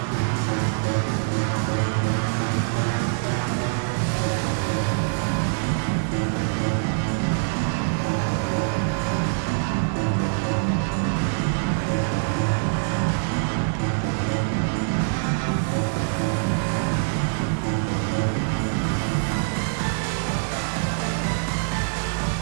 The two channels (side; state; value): left; silent; digital silence